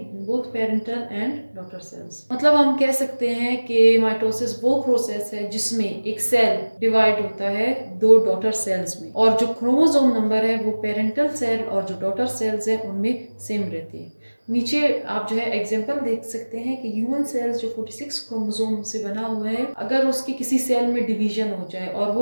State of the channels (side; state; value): both; inverted; correlation -1.00